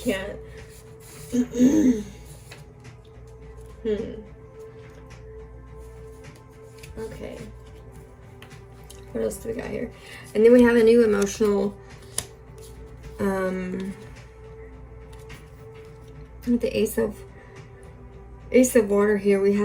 Okay. What else do we got here? And then we have a new emotional, with the Ace of Water here, we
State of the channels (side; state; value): both; identical; correlation 1.00